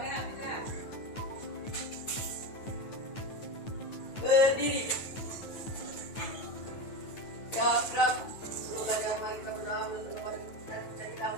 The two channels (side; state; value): right; late; 9.2 ms